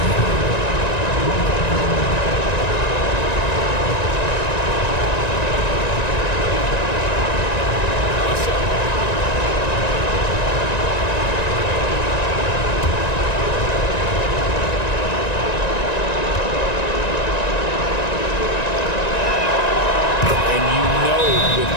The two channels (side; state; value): right; late; 1.9 ms